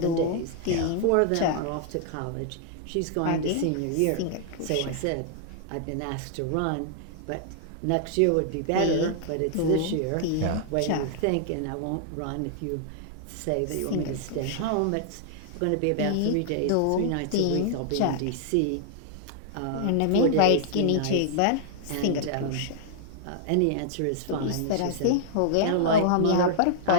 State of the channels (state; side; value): different; both; correlation 0.00